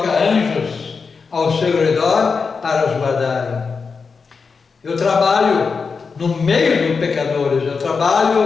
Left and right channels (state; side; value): quieter; right; 5.1 dB